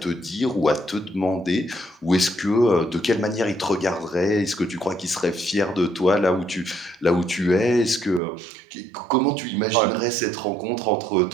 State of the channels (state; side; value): drops out; left; at 8.2 s